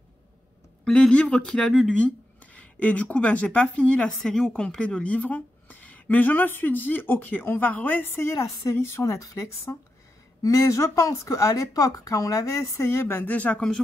les livres qu'il a lus, lui. Et du coup, ben, j'ai pas fini la série au complet de livres. Mais je me suis dit, ok, on va réessayer la série sur Netflix. Mais je pense qu'à l'époque, quand on l'avait essayé, ben déjà, comme je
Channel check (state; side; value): normal; both; correlation 0.88